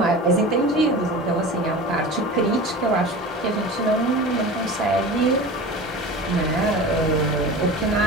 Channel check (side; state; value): both; normal; correlation 0.33